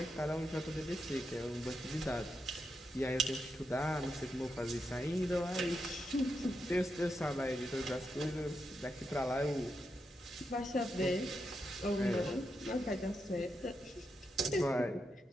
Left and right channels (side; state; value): both; normal; correlation 0.85